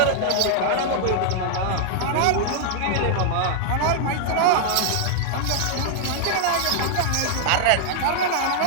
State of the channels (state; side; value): different; both; correlation -0.01